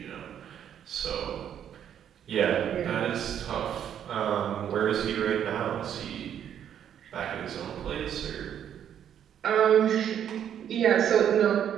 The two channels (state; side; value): quieter; left; 9.5 dB